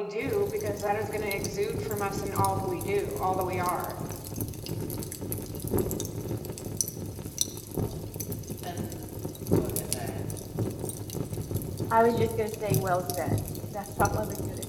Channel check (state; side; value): identical; both; correlation 1.00